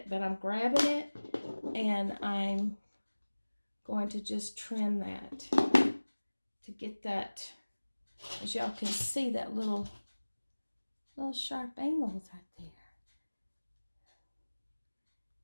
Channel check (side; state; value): both; inverted; correlation -1.00